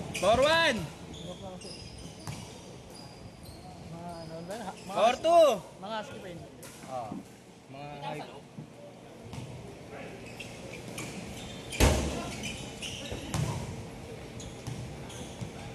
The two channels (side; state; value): both; identical; correlation 1.00